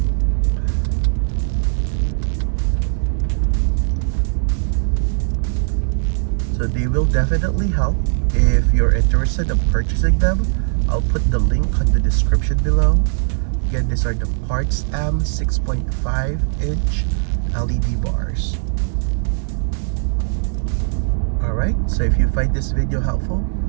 So they will definitely help. If you're interested in purchasing them, I'll put the link on the description below. Again, these are the Partsam 6.5-inch LED bars. Alright, so if you find this video helpful,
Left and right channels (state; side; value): silent; left; digital silence